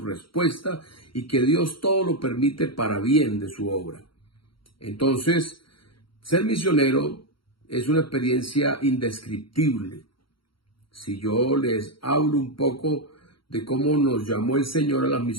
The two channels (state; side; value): late; right; 0.74 ms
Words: y que Dios todo lo permite para bien de su obra. Entonces, ser misionero es una experiencia indescriptible. Si yo les hablo un poco de cómo nos llamó el Señor a las